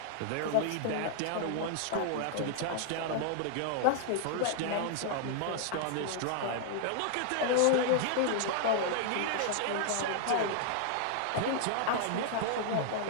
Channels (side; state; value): both; different; correlation 0.00